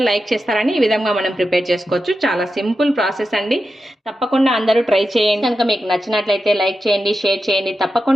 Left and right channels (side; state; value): both; normal; correlation 0.90